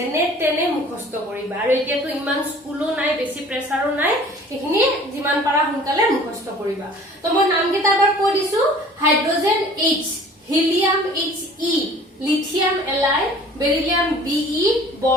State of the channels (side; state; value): both; normal; correlation 0.48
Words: তেনে মুখস্থ কৰিবা আৰু এতিয়াতো ইমান স্কুলো নাই বেছি প্ৰেছাৰো নাই এইখিনি যিমান পাৰা সোনকালে মুখস্থ কৰিবা তো মই নাম কেইটা এবাৰ কৈ দিছো hydrogen H helium He lithium Li beryllium Be